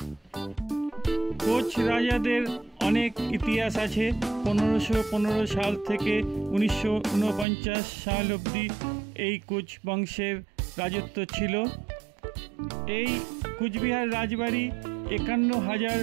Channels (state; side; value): drops out; left; at 7.5 s